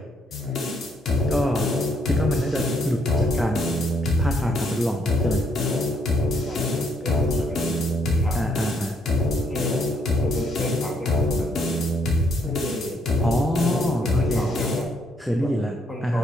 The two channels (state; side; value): normal; both; correlation 0.71